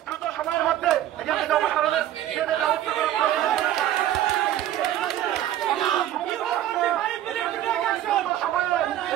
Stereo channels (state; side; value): quieter; left; 12.5 dB